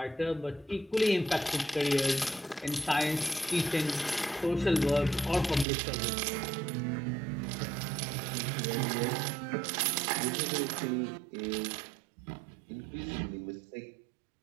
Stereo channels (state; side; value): drops out; left; at 5.7 s